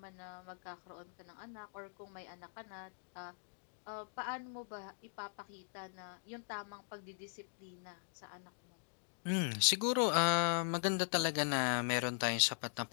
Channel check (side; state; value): right; silent; digital silence